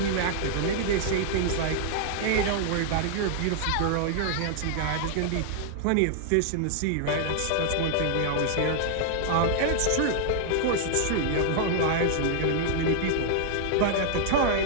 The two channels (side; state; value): both; different; correlation -0.01